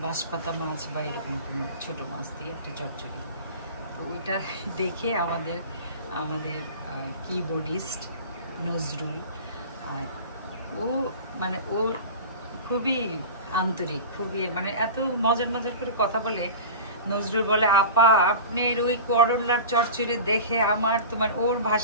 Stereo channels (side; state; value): both; inverted; correlation -0.33